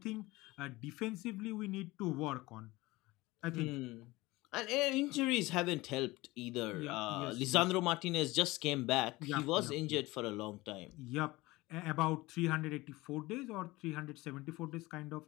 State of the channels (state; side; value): quieter; right; 20.5 dB